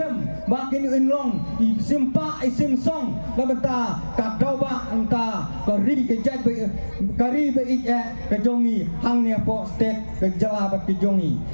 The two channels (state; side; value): inverted; both; correlation -1.00